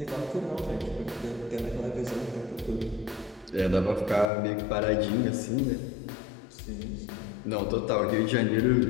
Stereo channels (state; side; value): drops out; right; at 4.2 s